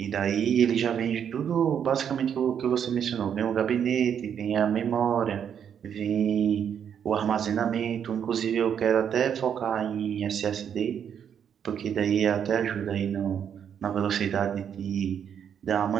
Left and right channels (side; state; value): left; quieter; 8.4 dB